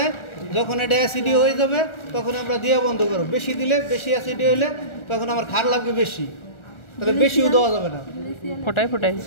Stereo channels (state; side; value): late; right; 1.4 ms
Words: যখন এটা অ্যাসিডিও হয়ে যাবে তখন আমরা দিয়ে বন্ধ করব। বেশি দিলে, বেশি অ্যাসিডিও হলে তখন আমার ক্ষার লাগবে বেশি, তাহলে বেশিও দেওয়া যাবে না। ফোটাই ফোটাই